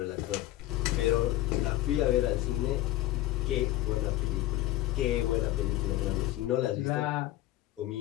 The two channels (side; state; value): right; quieter; 15.2 dB